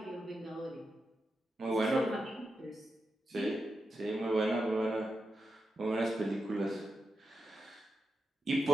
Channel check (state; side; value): normal; both; correlation 0.88